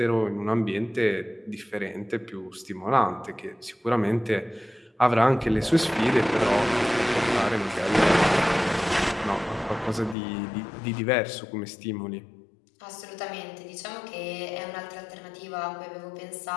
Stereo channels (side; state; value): right; drops out; at 10.2 s